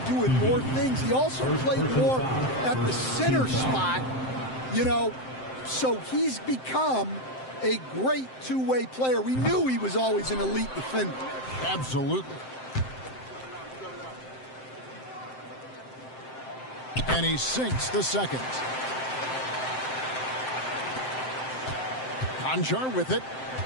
doing more things. He also played more at the center spot, you know, so he's become a great two-way player. We knew he was always an elite defender. Absolutely. And he sinks the second. Conjar with it.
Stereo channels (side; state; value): right; late; 7.7 ms